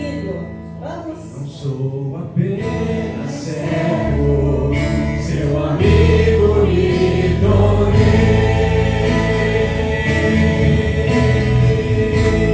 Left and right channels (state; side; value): identical; both; correlation 1.00